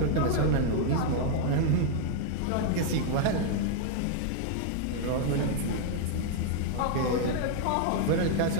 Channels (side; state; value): both; different; correlation 0.00